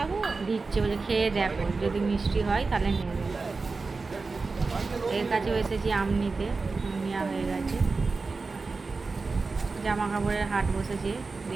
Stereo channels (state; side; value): quieter; left; 4.1 dB